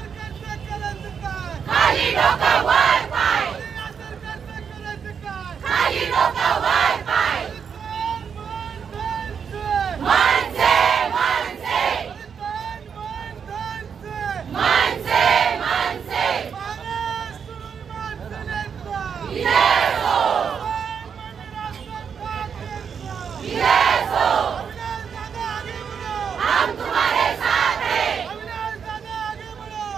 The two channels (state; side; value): quieter; left; 6.9 dB